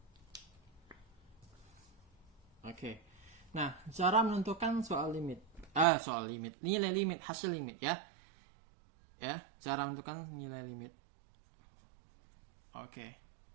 Oke. Nah, cara menentukan nilai limit, hasil limit ya. Ya, cara menentukan nilai limit. Oke.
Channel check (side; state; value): left; drops out; at 5.9 s